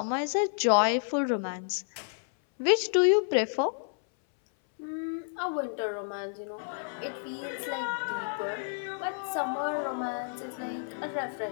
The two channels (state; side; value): silent; right; 58 dB below the other